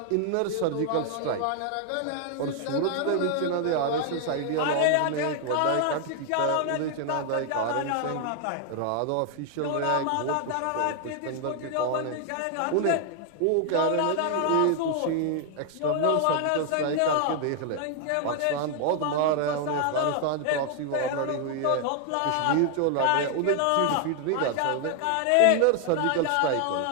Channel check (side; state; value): both; different; correlation 0.00